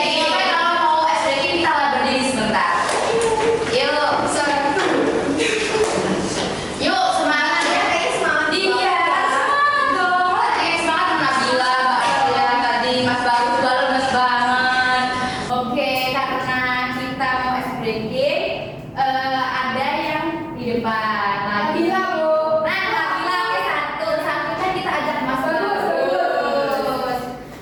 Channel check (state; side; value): identical; both; correlation 1.00